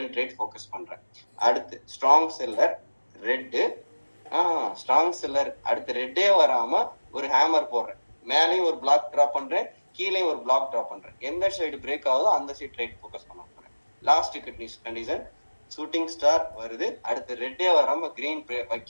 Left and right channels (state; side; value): inverted; both; correlation -1.00